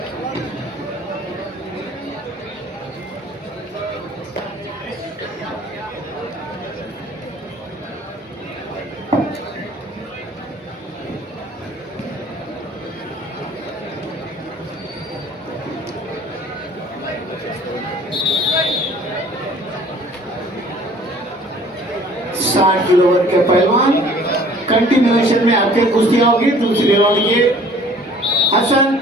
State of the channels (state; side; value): normal; both; correlation 0.52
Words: साठ किलो वर्ग के पहलवान कंटिन्यूएशन में आपके कुश्तियां होगी। दूसरी राउंड के हसन